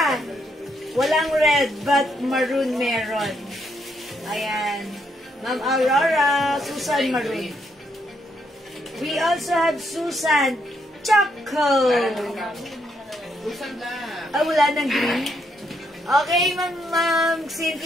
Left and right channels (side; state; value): both; normal; correlation 0.76